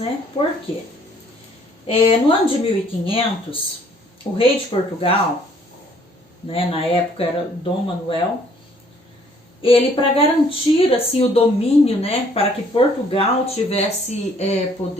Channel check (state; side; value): normal; both; correlation 0.61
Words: Por quê? No ano de 1500, o rei de Portugal, né, na época era Dom Manuel, ele, para garantir assim o domínio, né, para que Portugal tivesse